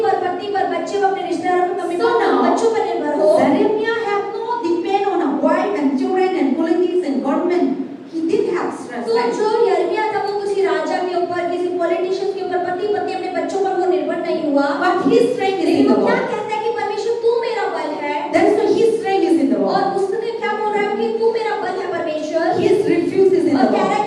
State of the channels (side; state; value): both; identical; correlation 1.00